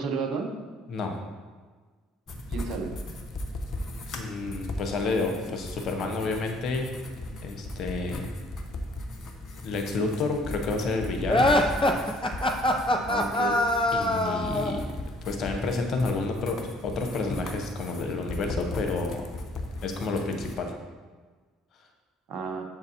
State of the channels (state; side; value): normal; both; correlation 0.59